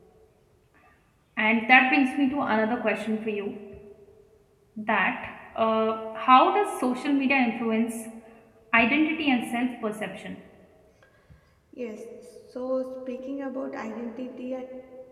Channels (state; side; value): identical; both; correlation 1.00